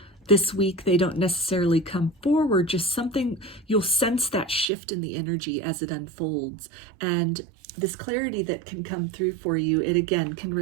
this week they don't necessarily come forward, just something, you'll sense that shift in the energy as it unfolds. And this clarity that can come through for you, it again can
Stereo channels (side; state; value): left; drops out; at 4.7 s